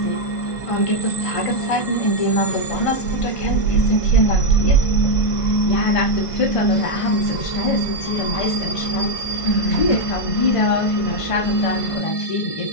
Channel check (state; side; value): late; right; 1.5 ms